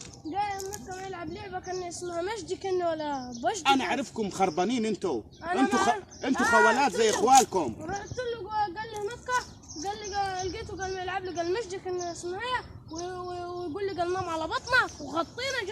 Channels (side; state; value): both; identical; correlation 1.00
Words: جاي النقة يلعب لعبة كان اسمها مجدي كان ولا بجدي. انا اعرفكم خربانين انتوا خوالات زي اخوالكم. رحت له قال لي نقة. قال لي لقيته قال يلعب لي قال مجدي كان اسمها هي ويقول لي قال نام على بطنك وغطينا.